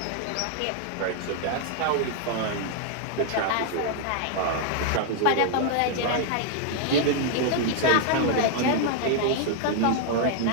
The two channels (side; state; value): both; different; correlation 0.00